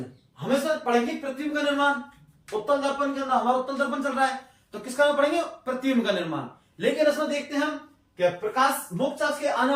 हमेशा पढ़ेंगे प्रतिबिंब का निर्माण। उत्तल दर्पण के अंदर हमारा उत्तल दर्पण चल रहा है, तो किसका पढ़ेंगे? प्रतिबिंब का निर्माण। लेकिन इसमें देखते हैं हम कि प्रकाश मोक्षाक्ष के आने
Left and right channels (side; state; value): both; identical; correlation 1.00